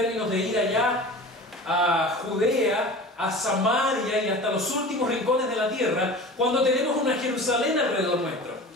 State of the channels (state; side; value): normal; both; correlation 0.37